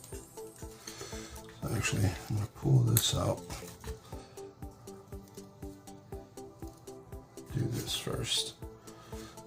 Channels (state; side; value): identical; both; correlation 1.00